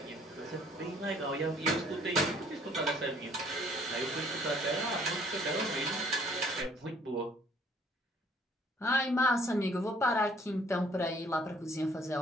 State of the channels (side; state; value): both; normal; correlation 0.60